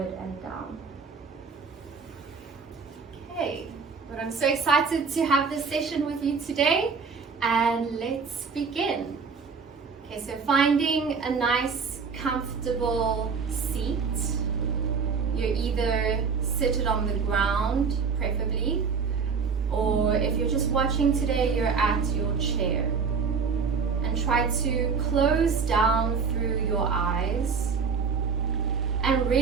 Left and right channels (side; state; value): left; quieter; 5.5 dB